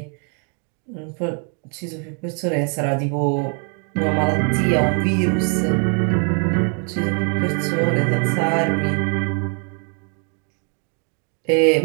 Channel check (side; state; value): left; quieter; 39.7 dB